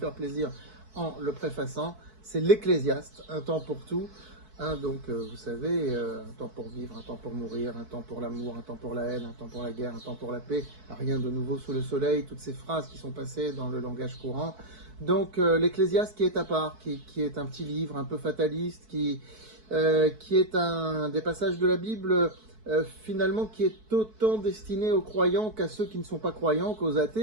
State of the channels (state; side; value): late; left; 4.6 ms